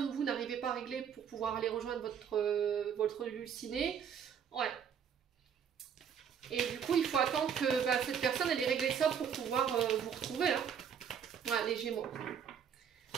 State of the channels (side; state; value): left; quieter; 7.8 dB